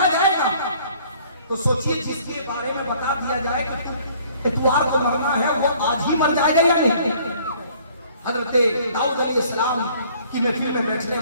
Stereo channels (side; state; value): both; inverted; correlation -0.57